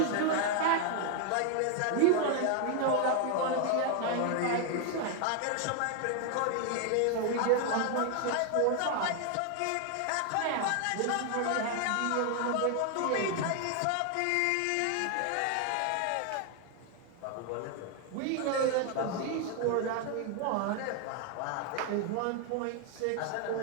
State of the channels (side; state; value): both; different; correlation 0.00